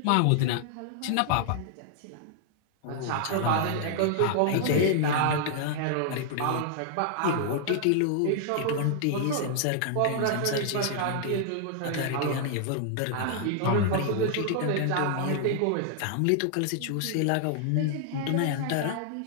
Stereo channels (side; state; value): both; different; correlation 0.00